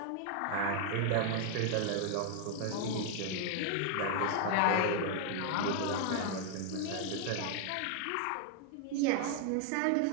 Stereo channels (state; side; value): different; both; correlation 0.00